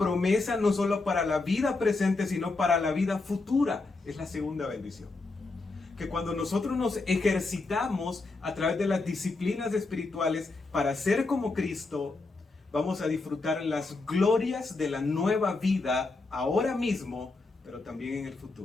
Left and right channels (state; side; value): quieter; right; 3.6 dB